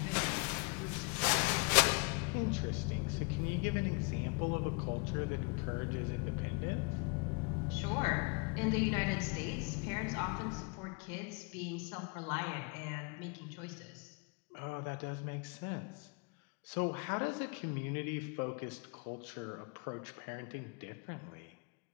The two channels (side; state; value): right; quieter; 32.0 dB